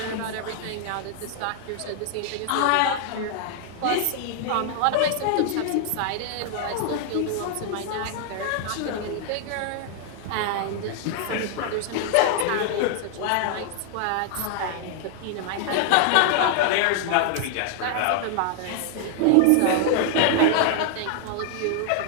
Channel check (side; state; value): both; different; correlation 0.00